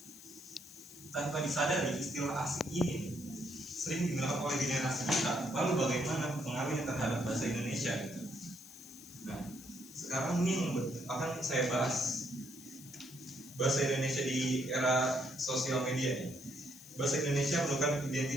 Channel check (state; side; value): noise; left; hiss, 18 dB below the sound